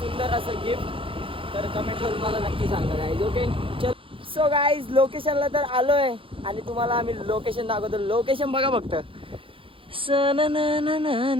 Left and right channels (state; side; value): late; left; 0.26 ms